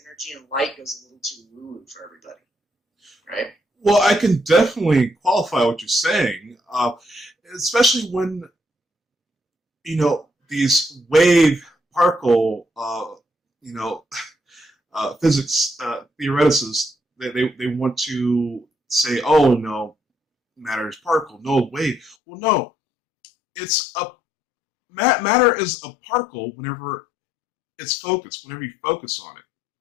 energy and light goes a little too woo for everybody, right? Well, I can definitely qualify what you're saying, especially when these wave particle physics theoreticists, they want to say, oh no, matter is particle, no wave. Well, no, it's matter is a particle whenever it's focused, whenever you focus on it.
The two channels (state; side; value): drops out; right; at 22.2 s